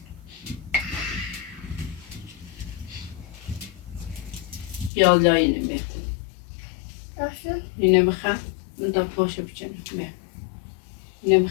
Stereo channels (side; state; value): right; drops out; at 4.9 s